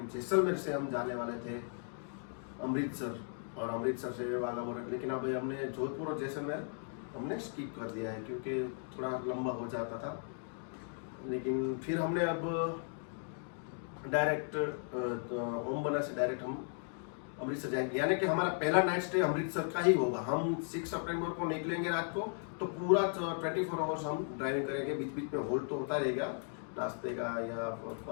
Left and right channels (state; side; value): silent; right; 54 dB below the other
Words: जैसलमेर से हम जाने वाले थे अमृतसर, और अमृतसर से वाला हो रहा है। लेकिन अब हमने जोधपुर और जैसलमेर हमने स्किप कर दिया है क्योंकि थोड़ा लंबा हो जाता था। लेकिन फिर हमने अब डायरेक्ट ओम मन्ना से डायरेक्ट हम अमृतसर जाएंगे, यानी कि हमारा पहला नाइट स्टे अमृतसर का ही होगा। हम 6 सितंबर को निकलेंगे रात को, तो पूरा 24 आवर्स हम ड्राइविंग करेंगे। बीच बीच में होल्ड तो होता रहेगा नाश्ते का या